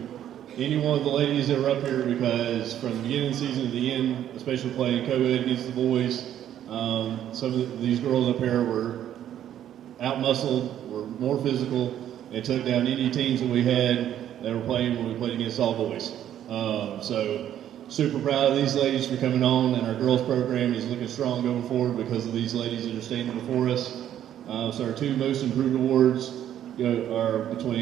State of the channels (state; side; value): quieter; left; 10.9 dB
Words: any one of the ladies that were up here because from the beginning of the season to the end, especially playing co-ed against the boys, some of these girls up here were out-muscled, were more physical, and took down any teams that we had that were playing when we played against all boys. So super proud of these ladies for coming on, and our girls program is looking strong going forward because of these ladies that are standing before us. So our 2 most improved awards are